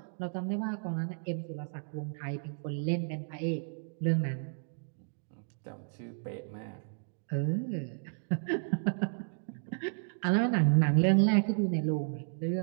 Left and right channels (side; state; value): left; silent; digital silence